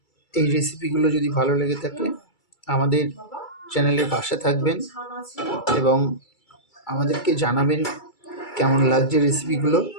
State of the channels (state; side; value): late; right; 2.3 ms